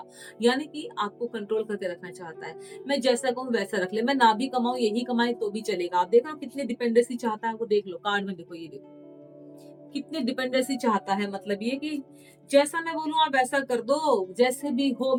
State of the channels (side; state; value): both; identical; correlation 1.00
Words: यानी कि आपको कंट्रोल करके रखना चाहता है। मैं जैसा कहूँ वैसा रख ले, मैं ना भी कमाऊँ, यही कमाए तो भी चलेगा। आप देख रहे हो कितनी डिपेंडेंसी चाहता है वो, देख लो कार्ड में, देखो ये देखो। कितनी डिपेंडेंसी चाहता है, मतलब ये कि जैसा मैं बोलूँ आप वैसा कर दो, जैसे भी हो